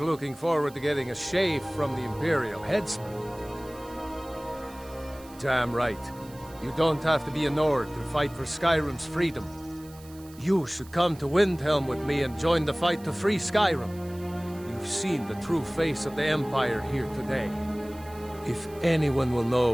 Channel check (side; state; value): right; noise; hiss, 22 dB below the sound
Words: forward to getting a shave from the Imperial headsman. Damn right. You don't have to be a Nord to fight for Skyrim's freedom. You should come to Windhelm with me and join the fight to free Skyrim. You've seen the true face of the Empire here today. If anyone will know